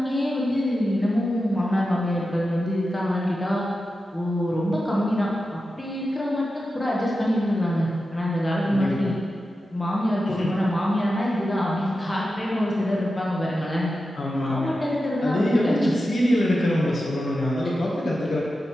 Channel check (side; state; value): both; normal; correlation 0.91